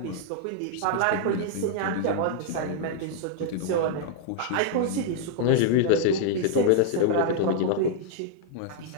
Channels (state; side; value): different; both; correlation -0.01